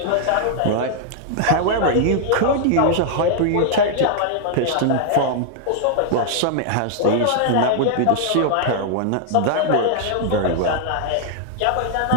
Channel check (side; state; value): both; different; correlation -0.01